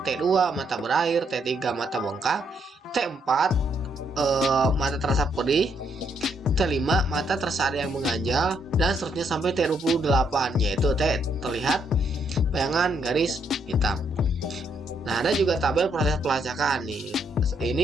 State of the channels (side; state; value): both; normal; correlation 0.74